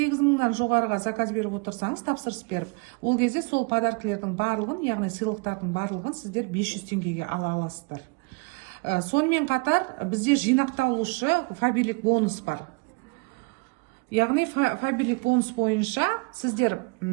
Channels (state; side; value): quieter; left; 30.4 dB